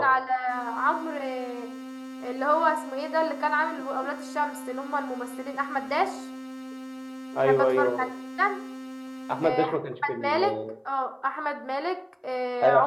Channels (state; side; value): identical; both; correlation 1.00